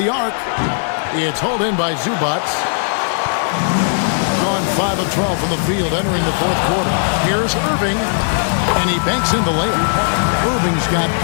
arc. It's hauled in by Zubac. Gone 5 of 12 from the field entering the fourth quarter. Here's Irving. And he banks in the layup. Irving's got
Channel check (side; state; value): right; silent; digital silence